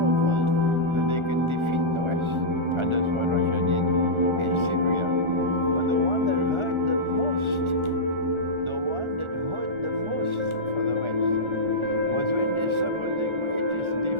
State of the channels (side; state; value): left; late; 1.4 ms